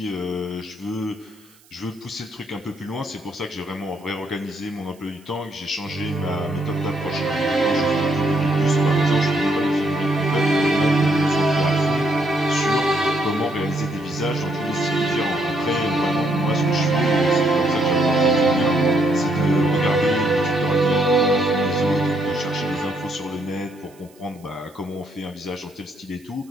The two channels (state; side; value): noise; right; hiss, 29 dB below the sound